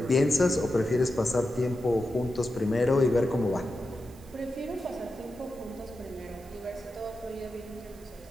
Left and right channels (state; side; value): noise; right; hiss, 25 dB below the sound